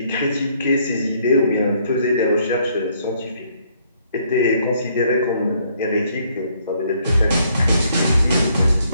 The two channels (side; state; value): both; inverted; correlation -0.68